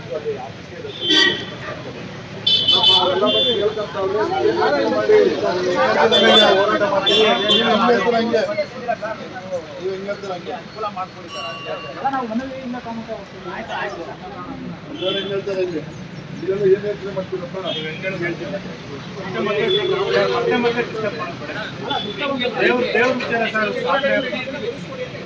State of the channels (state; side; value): identical; both; correlation 1.00